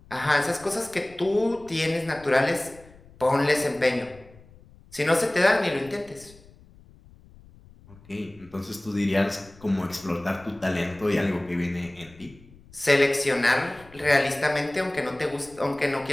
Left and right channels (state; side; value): noise; left; rumble, 24 dB below the sound